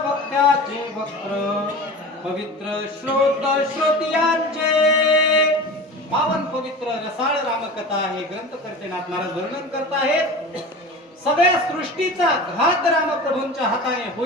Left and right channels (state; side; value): normal; both; correlation 0.33